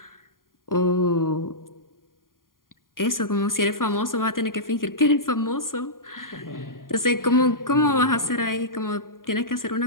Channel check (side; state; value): right; late; 0.91 ms